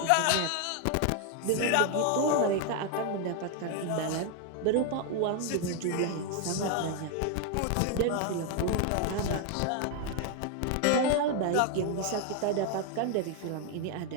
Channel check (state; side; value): different; both; correlation 0.01